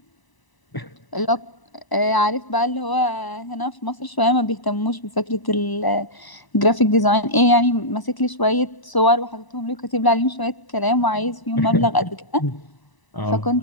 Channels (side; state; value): right; late; 1.0 ms